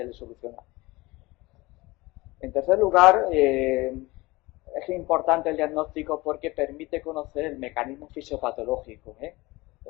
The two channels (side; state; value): right; quieter; 21.6 dB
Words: le soluciona. En tercer lugar, es importante el diagnóstico porque permite conocer el mecanismo fisiopatológico,